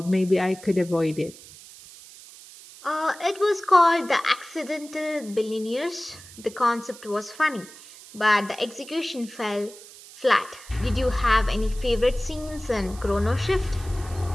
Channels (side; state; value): right; noise; hiss, 19 dB below the sound